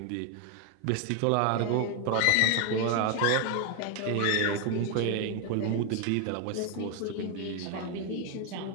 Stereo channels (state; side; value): different; both; correlation 0.01